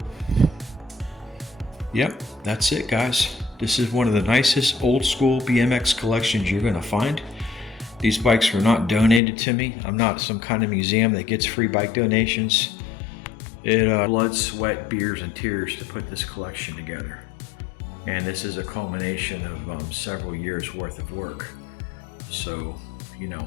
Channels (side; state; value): right; drops out; at 9.2 s